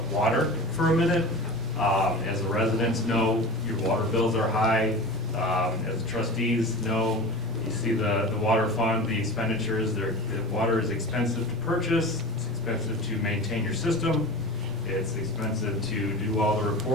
water for a minute. As the residents know, your water bills are high. As trustees know, you see the water fund, the expenditures, the water is expensive to purchase, it's expensive to maintain your system, it's expensive to do all the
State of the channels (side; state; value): both; normal; correlation 0.32